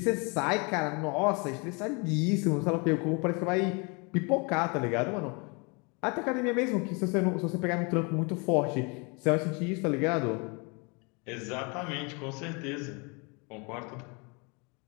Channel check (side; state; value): right; quieter; 31.4 dB